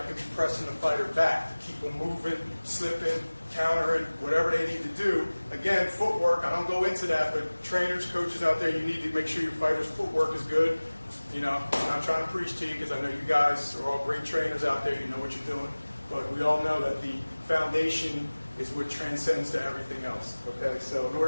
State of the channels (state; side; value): inverted; both; correlation -1.00